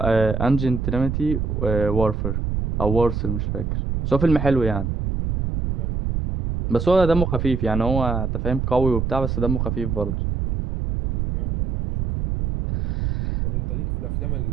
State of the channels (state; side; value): noise; right; rumble, 1 dB below the sound